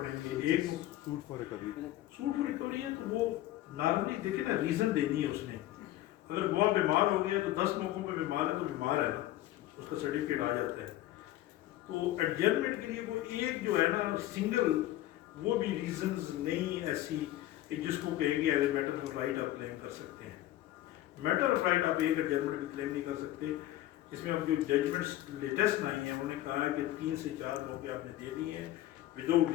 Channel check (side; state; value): right; quieter; 14.8 dB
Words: گے. ایک سوٹ فار ریکوری ہے تو وہ نارملی دیکھیں نا، ریزن دینی ہے اس نے. اگر گواہ بیمار ہو گیا تو 10 موقعوں پہ بیمار ہے تو بیمار ہے نا، اس کا سرٹیفکیٹ آ جاتا ہے. تو ایڈجرمنٹ کے لیے وہ ایک جو ہے نا سنگل، وہ بھی ریزنز نہیں ایسی کہ جس کو کہیں گے as a matter of right آپ کلیم کر سکتے ہیں. میٹر آف رائٹ آپ ایک ایڈجرمنٹ بھی کلیم نہیں کر سکتے. اس میں اب جو ججمنٹس لیٹسٹ آئی ہیں انہوں نے کہا ہے کہ 3 سے 4 موقع آپ نے دے دیے ہیں without